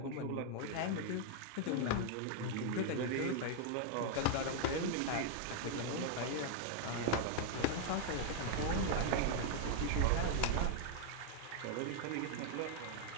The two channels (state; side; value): different; both; correlation 0.00